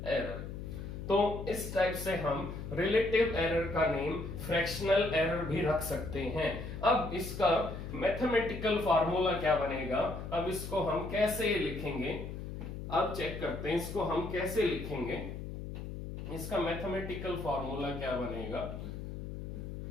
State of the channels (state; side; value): noise; left; hum, 8 dB below the sound